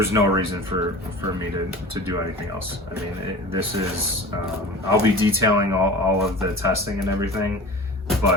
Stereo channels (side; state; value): both; normal; correlation 0.37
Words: reason for me to do anything else. I mean, this is, I'll be detailing all of the testing and everything,